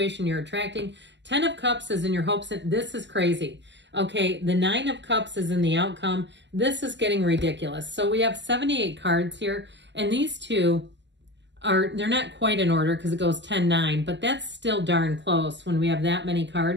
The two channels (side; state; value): left; late; 0.52 ms